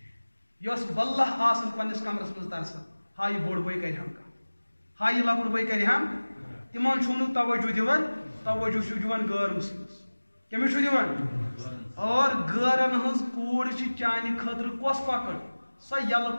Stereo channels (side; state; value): both; inverted; correlation -1.00